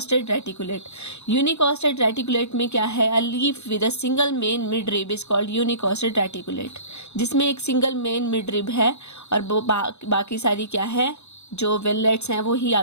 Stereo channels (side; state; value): right; late; 0.81 ms